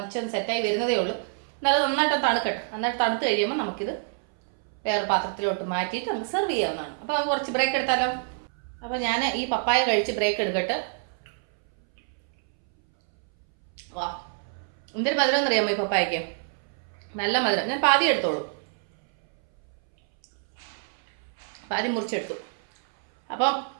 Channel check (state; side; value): silent; left; 61 dB below the other